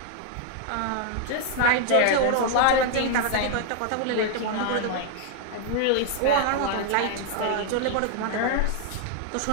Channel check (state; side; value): different; both; correlation 0.00